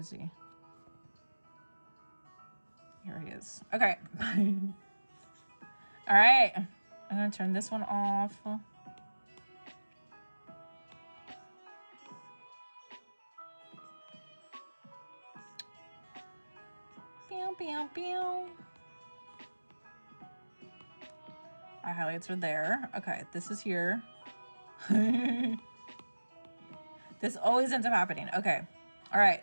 he? Here he is. Okay. All right. I'm gonna turn this one off. Pew, pew, pew. My highlights are there. Okay, this is here. This always ends up happening. Okay. All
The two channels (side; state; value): both; inverted; correlation -1.00